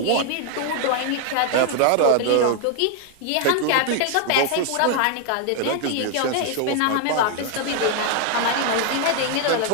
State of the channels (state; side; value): different; both; correlation 0.00